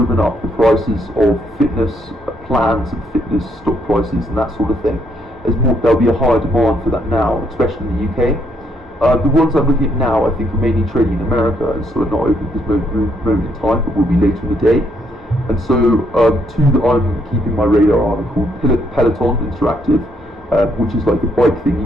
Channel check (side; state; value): both; normal; correlation 0.72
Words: up the prices of fitness plans and fitness stock prices and that sort of thing. There'll be a higher demand for that now, especially in the UK. The ones I'm looking at now, I think, are mainly trading in America, and so are not open at this moment in time, but will be later in the day. And so two that I'm keeping my radar on are called Peloton Interactive, which is like the bike thing